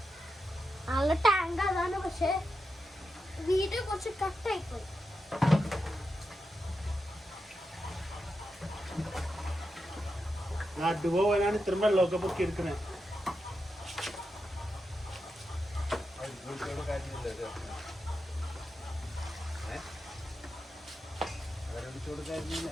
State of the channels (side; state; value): both; normal; correlation 0.88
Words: നല്ല ടാങ്ക് അതാണ്, പക്ഷെ വീഡിയോ കുറച്ച് കട്ടായിപ്പോയി. നടുപോവാനാണ് ഇത്രയും വെള്ളമൊക്കെ പൊക്കി എടുക്കണേ.